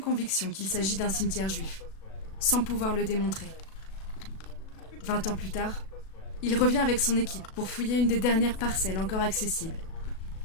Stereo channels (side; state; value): right; late; 37 ms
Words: qu'il s'agit d'un cimetière juif, sans pouvoir le démontrer. 20 ans plus tard, il revient avec son équipe pour fouiller une des dernières parcelles encore accessibles.